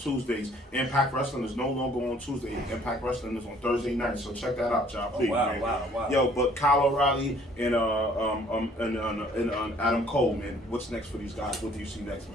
Impact Wrestling is no longer on Tuesday. Impact Wrestling is on Thursday night. So check that out, y'all. Please, wow. Yo, but Kyle O'Reilly and Adam Cole, man. What's next for these guys? What do you see next,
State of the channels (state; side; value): normal; both; correlation 0.58